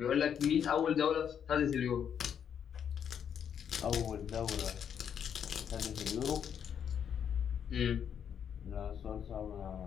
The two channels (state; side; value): quieter; right; 8.3 dB